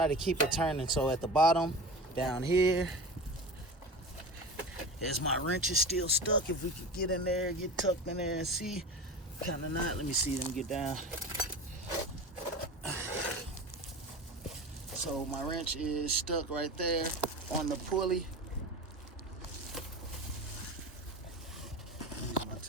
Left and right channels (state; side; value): normal; both; correlation 0.31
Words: to keep it turning. So at the bottom down here, as my wrench is still stuck, if we could get in there, get tucked in there and see, kind of not. Let me see them get down. So my wrench is stuck right there on the pulley. Use my